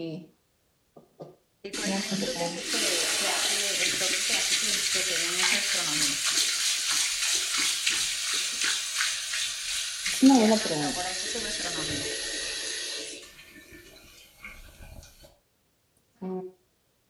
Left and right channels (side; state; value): both; identical; correlation 1.00